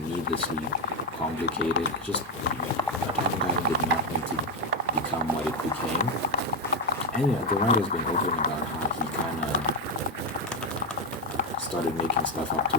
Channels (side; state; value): both; normal; correlation 0.07